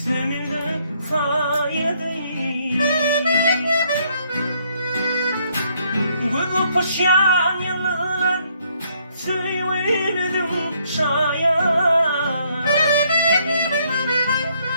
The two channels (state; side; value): inverted; both; correlation -0.69